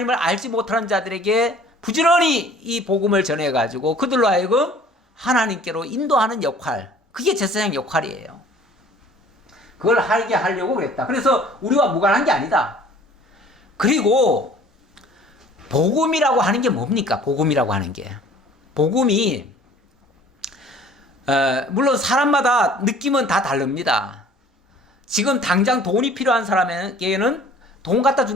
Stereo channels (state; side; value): normal; both; correlation 0.50